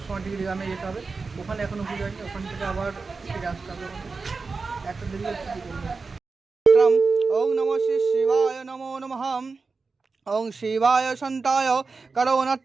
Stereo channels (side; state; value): left; quieter; 4.3 dB